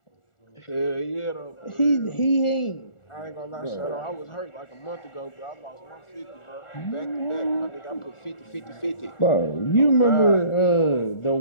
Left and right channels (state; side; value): late; right; 1.4 ms